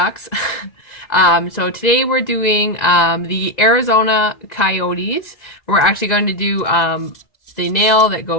So today we're doing the Arizona Coyotes. We're actually going to do the nail that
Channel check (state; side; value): late; right; 2.0 ms